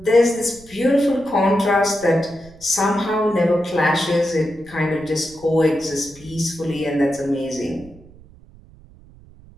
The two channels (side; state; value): right; noise; rumble, 23 dB below the sound